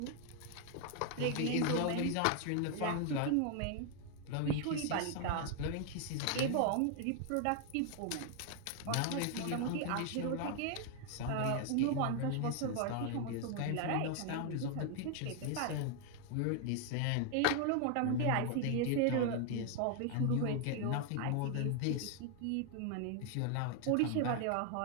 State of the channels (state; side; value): different; both; correlation 0.00